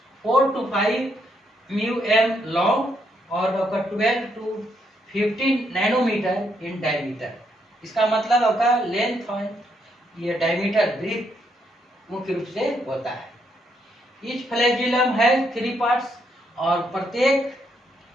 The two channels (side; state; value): both; normal; correlation 0.75